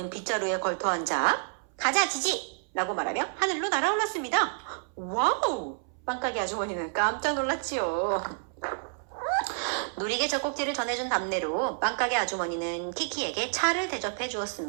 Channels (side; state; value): left; silent; 59 dB below the other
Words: 빗자루에 걸터 앉아 가자 지지! 라고 말하며 하늘로 날아올랐습니다. 와우! 빵가게 아주머니는 깜짝 놀랐지요. 놀이개 젖꼭지를 전해준 답례로 빵가게 아주머니는 키키에게 차를 대접해